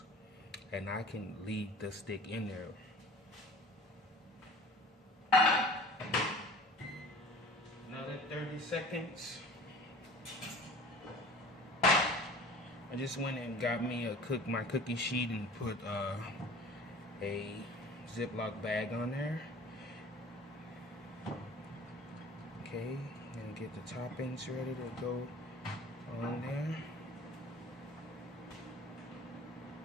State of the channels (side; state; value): both; normal; correlation 0.44